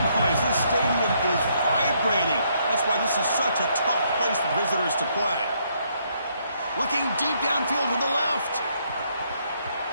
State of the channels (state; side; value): inverted; both; correlation -0.72